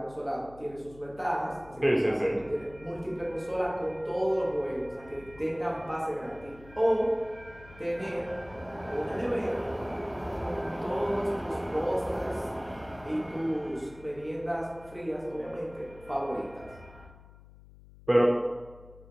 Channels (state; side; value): noise; left; hum, 21 dB below the sound